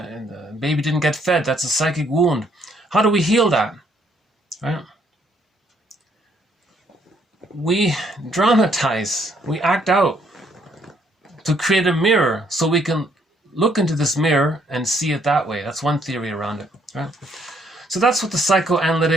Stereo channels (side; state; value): both; normal; correlation 0.68